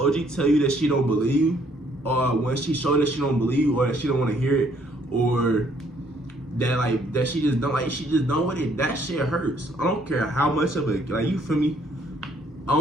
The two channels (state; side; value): normal; both; correlation 0.65